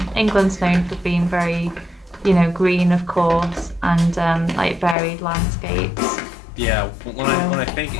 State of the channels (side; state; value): right; drops out; at 5.0 s